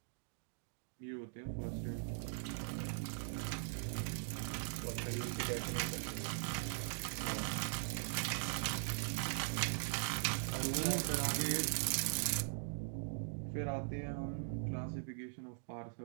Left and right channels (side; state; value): left; silent; digital silence